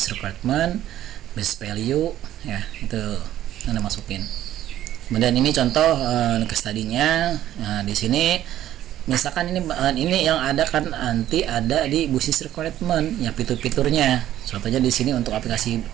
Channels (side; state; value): left; quieter; 12.6 dB